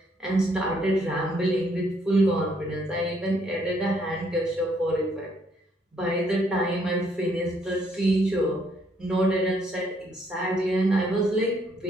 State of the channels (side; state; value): both; normal; correlation 0.70